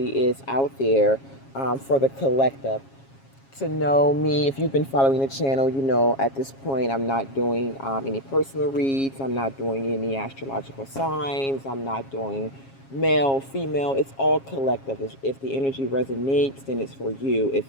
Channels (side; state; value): right; late; 7.3 ms